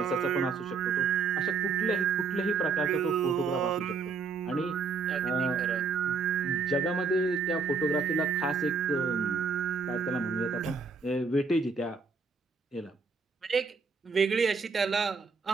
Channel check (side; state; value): left; quieter; 4.8 dB